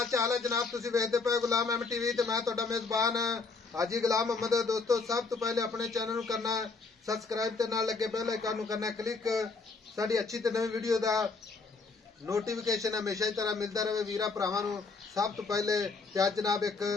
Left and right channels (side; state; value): right; quieter; 4.2 dB